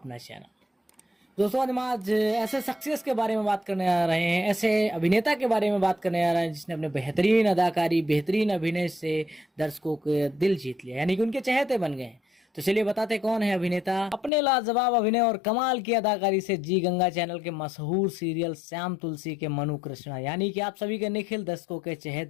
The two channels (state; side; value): drops out; right; at 14.3 s